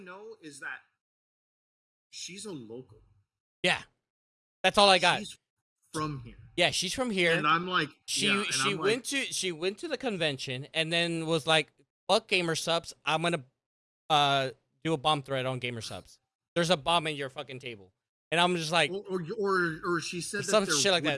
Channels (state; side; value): identical; both; correlation 1.00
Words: is that she's a local. Yeah. That's all I got. She's from here. Yeah, she's from here. And I'm like, yeah, and She I'm like, she went to the convention and then was like, "Fuck gamer subs, I'm gonna do a bomb threat on gamer subs. There's a bomb in your fucking table," and I'm just like, or she said that some there shit like would